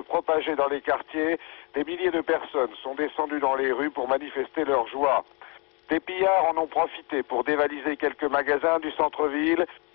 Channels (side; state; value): right; quieter; 32.3 dB